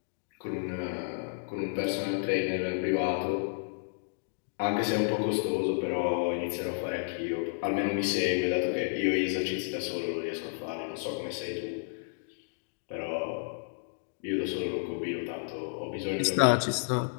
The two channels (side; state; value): right; silent; digital silence